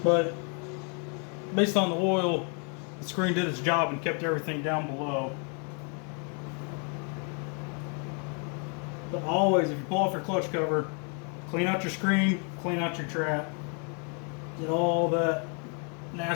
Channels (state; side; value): quieter; right; 38.8 dB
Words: But based on the oil, the screen did its job and kept everything down below. But always, if you pull off your clutch cover, clean out your screen, clean out your trap. Get all that